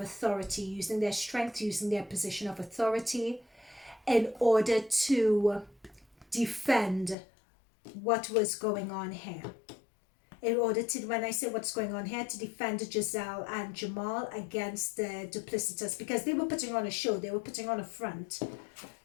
using their strength, using their position of authority in order to defend what was going on here. In order to, when I say what's going on here, to defend Gizelle and Jamal against the duplicitous, because they were putting on a show. They were putting on a front.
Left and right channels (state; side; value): drops out; right; at 7.2 s